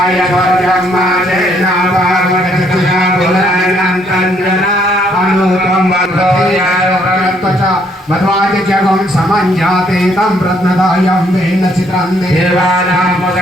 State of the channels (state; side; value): normal; both; correlation 0.68